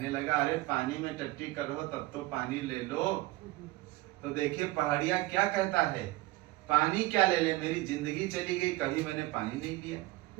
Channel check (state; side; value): quieter; left; 19.6 dB